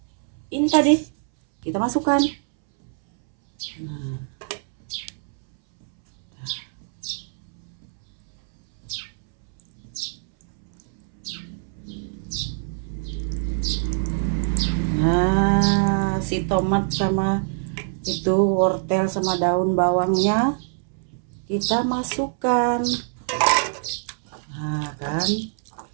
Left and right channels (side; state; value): left; silent; 63 dB below the other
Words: ini tadi kita masukkan. Nah, si tomat sama itu wortel sama daun bawangnya kita masukkan. Nah kan,